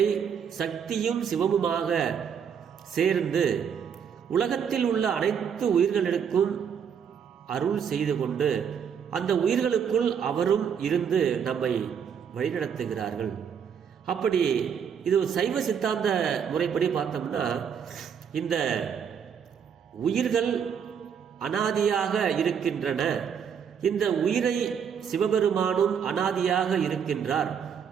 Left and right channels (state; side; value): quieter; left; 7.5 dB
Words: சக்தியும் சிவமுமாக சேர்ந்து உலகத்தில் உள்ள அனைத்து உயிர்களுக்கும் அருள் செய்து கொண்டு அந்த உயிர்களுக்குள் அவரும் இருந்து நம்மை வழிநடத்துகிறார்கள். அப்படி இது சைவ சித்தாந்த முறைப்படி பார்த்தோம்னா இந்த உயிர்கள் அனாதியாக இருக்கின்றன. இந்த உயிரை சிவபெருமானும் அனாதியாக இருக்கின்றார்.